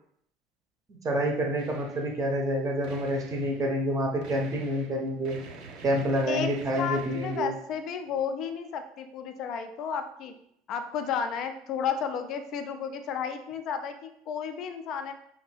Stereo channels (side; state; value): both; normal; correlation 0.46